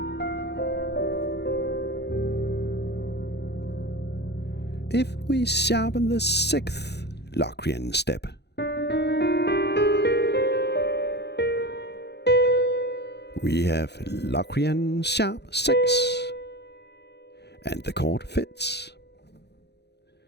If we sharpen the 6th Locrian step, we have Locrian sharp 6. And the chord fits.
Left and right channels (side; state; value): right; late; 0.49 ms